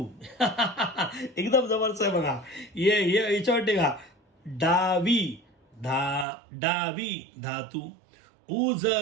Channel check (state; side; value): drops out; left; at 6.2 s